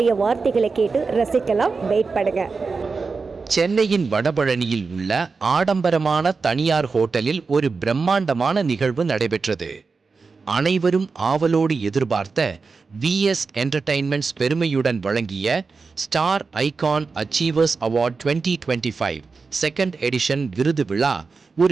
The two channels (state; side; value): quieter; left; 4.6 dB